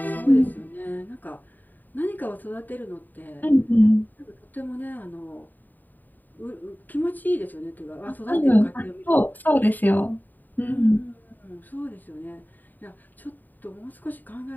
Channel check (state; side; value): late; right; 0.088 ms